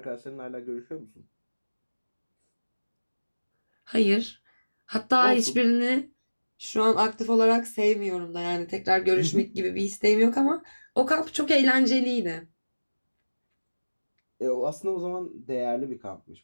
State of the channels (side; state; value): both; inverted; correlation -1.00